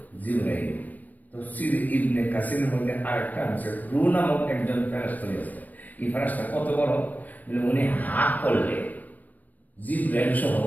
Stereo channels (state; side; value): late; right; 0.081 ms